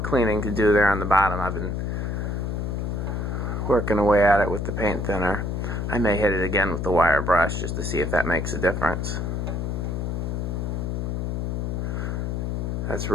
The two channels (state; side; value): noise; left; hum, 1 dB below the sound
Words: to do there on the bottom. I've been working away at it with the paint thinner. I may hit it again with the wire brush just to see if that makes a difference. That's